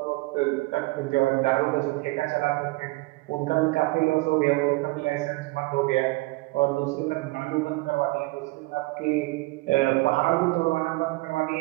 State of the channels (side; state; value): left; quieter; 22.7 dB